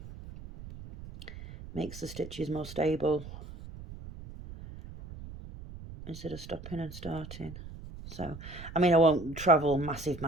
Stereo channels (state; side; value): noise; right; rumble, 13 dB below the sound